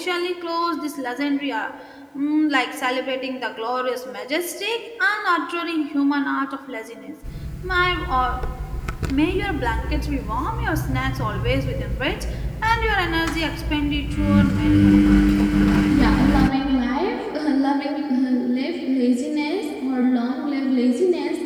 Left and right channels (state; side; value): identical; both; correlation 1.00